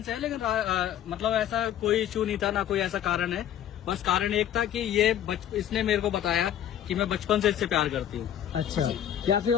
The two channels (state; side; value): quieter; right; 10.7 dB